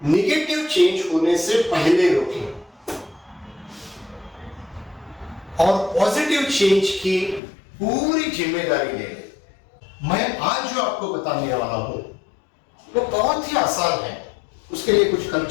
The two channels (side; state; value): right; drops out; at 7.4 s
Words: नेगेटिव चेंज होने से पहले रोकें और पॉजिटिव चेंज की पूरी जिम्मेदारी ले लें। मैं आज जो आपको बताने वाला हूं वो बहुत ही आसान है, उसके लिए कुछ